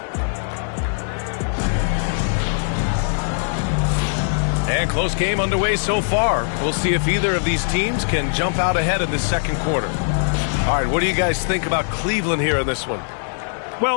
And close game underway so far. We'll see if either of these teams can jump out ahead in the second quarter. All right, what do you guys think about Cleveland here in this one?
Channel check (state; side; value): silent; right; 58 dB below the other